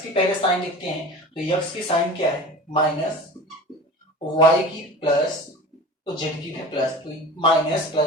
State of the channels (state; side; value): normal; both; correlation 0.37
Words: की पहले साइन लिखते हैं, तो यक्स की साइन क्या है, माइनस, वाई की प्लस, तो जेड की भी प्लस, तो माइनस